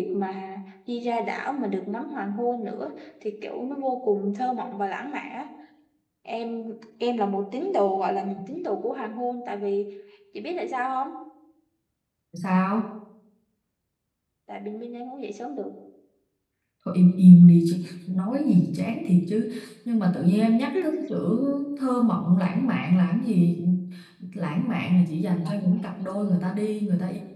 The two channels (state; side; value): identical; both; correlation 1.00